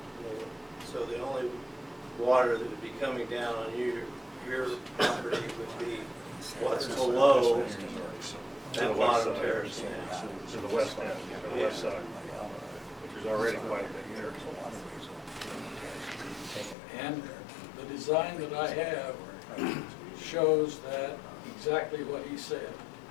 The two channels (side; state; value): right; drops out; at 16.8 s